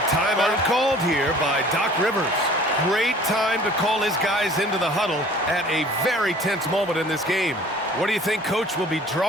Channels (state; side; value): normal; both; correlation 0.49